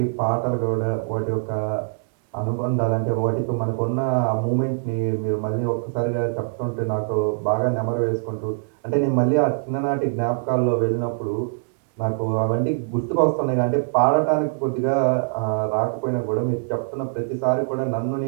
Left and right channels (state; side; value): silent; left; 62 dB below the other